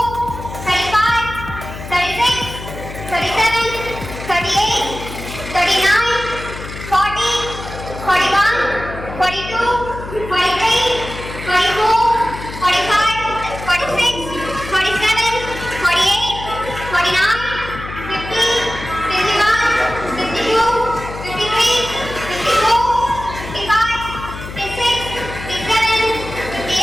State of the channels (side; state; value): left; noise; hum, 11 dB below the sound